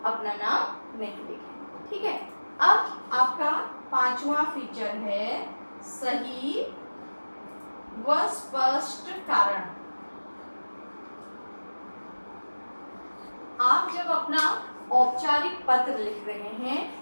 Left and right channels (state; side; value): inverted; both; correlation -1.00